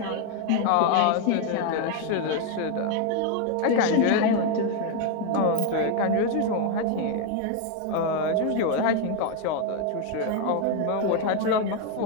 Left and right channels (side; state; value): both; different; correlation 0.01